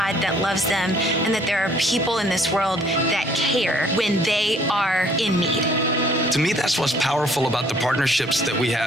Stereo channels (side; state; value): both; normal; correlation 0.60